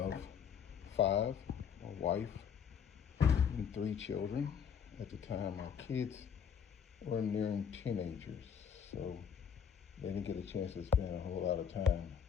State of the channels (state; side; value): quieter; right; 7.6 dB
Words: 5, a wife, and 3 children. At the time, our kids were nearing teenagers, so they didn't get a chance to spend a whole lot of time,